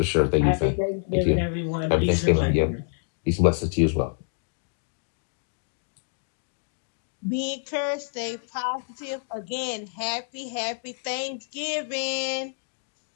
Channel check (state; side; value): silent; right; digital silence